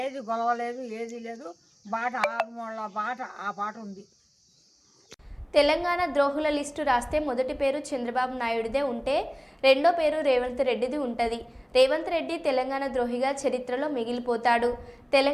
ఏది గొలవలేదు, ఏది లేదు. బాట 6 మూల బాట ఆ బాట ఉంది. తెలంగాణ ద్రోహుల లిస్టు రాస్తే మొదటి పేరు చంద్రబాబు నాయుడుదే ఉంటే రెండో పేరు రేవంత్ రెడ్డిది ఉంటుంది. రేవంత్ రెడ్డి తెలంగాణ ద్రోహిగా చరిత్రలో మిగిలిపోతాడు.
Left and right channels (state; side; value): identical; both; correlation 1.00